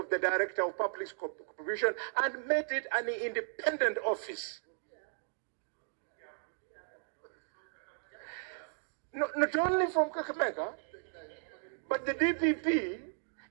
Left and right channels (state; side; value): silent; left; digital silence